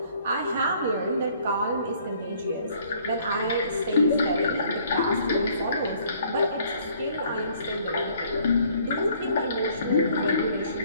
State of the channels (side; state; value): both; inverted; correlation -0.61